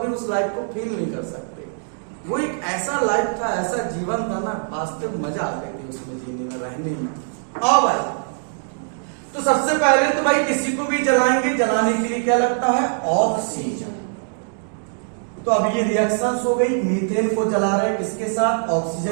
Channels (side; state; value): left; silent; 64 dB below the other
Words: उस लाइफ को फील नहीं कर सकते। वो एक ऐसा लाइफ था, ऐसा जीवन था ना, वास्तविक मजा आता है उसमें जीने में, रहने में। आओ भाई, तो सबसे पहले तो भाई किसी को भी जलाएंगे, जलाने के लिए क्या लगता है, ऑक्सीजन। तो अब ये रिएक्शंस हो गई, मीथेन को जला रहे किसके साथ,